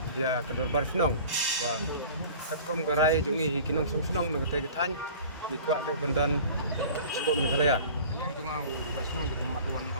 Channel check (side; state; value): both; inverted; correlation -0.43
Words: dia kedor bar sinong wa katkom garai jung i kinong som sinong nagatay gatan ni kwa tay bandan sebab Meghalaya Yang cuma ubah senang di pematuan